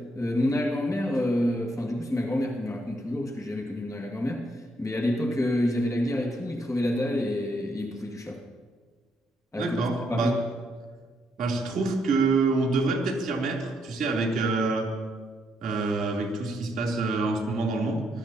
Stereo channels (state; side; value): normal; both; correlation 0.76